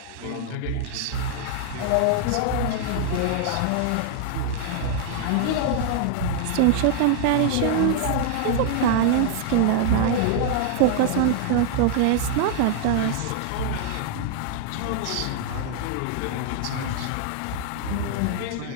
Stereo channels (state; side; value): different; both; correlation 0.00